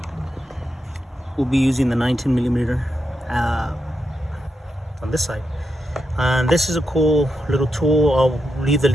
We'll be using the 19 millimeter on this side. And this is a cool little tool. I'll leave the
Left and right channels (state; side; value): normal; both; correlation 0.85